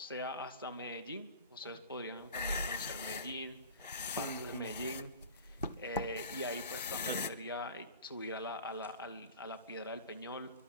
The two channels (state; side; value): inverted; both; correlation -0.38